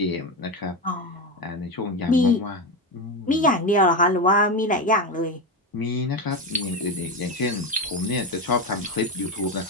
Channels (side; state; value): both; normal; correlation 0.15